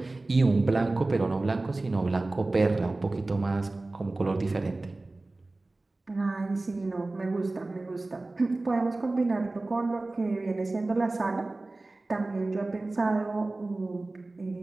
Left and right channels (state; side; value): quieter; left; 3.1 dB